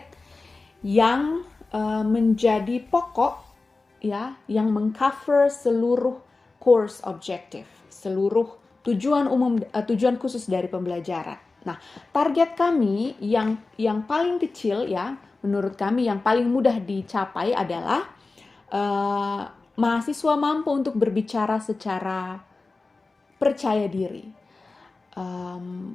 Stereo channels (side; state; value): right; quieter; 3.6 dB